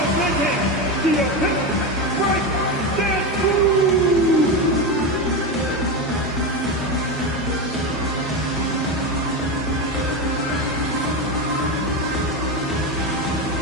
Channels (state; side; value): normal; both; correlation 0.16